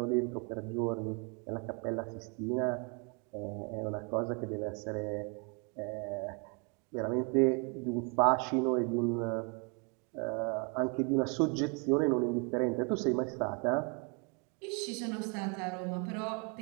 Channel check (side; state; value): left; quieter; 34.9 dB